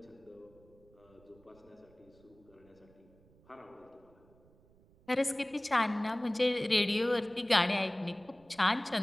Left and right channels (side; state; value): right; noise; rumble, 29 dB below the sound